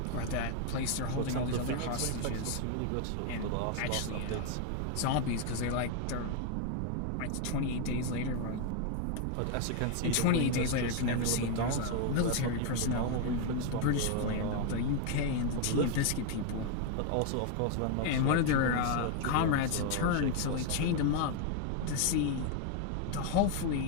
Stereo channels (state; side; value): different; both; correlation 0.00